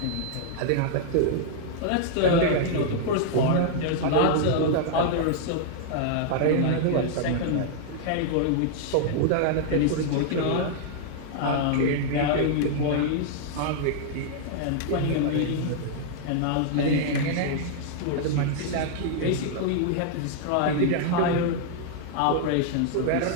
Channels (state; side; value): different; both; correlation -0.01